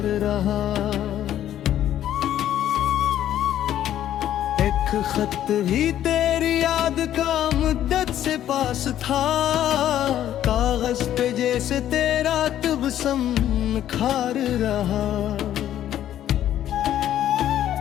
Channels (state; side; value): quieter; right; 11.6 dB